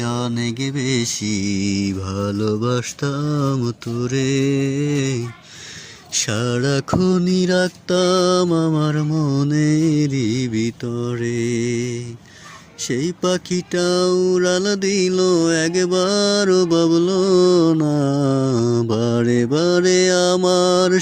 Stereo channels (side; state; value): both; identical; correlation 1.00